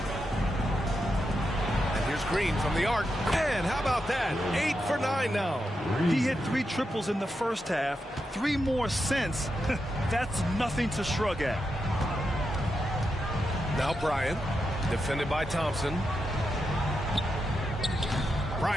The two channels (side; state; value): both; normal; correlation 0.86